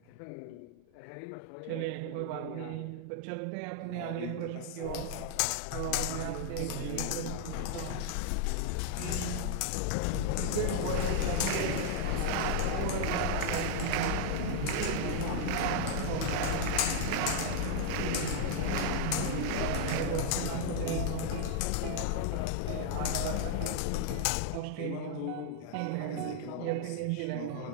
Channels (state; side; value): different; both; correlation -0.01